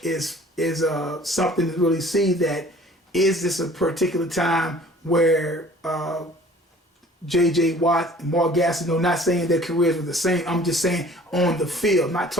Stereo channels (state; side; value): normal; both; correlation 0.50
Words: is something to really see that is this a particular time where J.J. Watt and Mark Gastineau, not saying their careers were the same, I'm just saying on the field, not